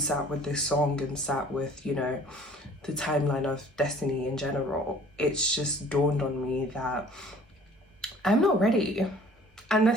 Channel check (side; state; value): both; normal; correlation 0.52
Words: with this song and sat with, you know, the timeline of destiny in general, it's just dawned on me that I'm not ready. And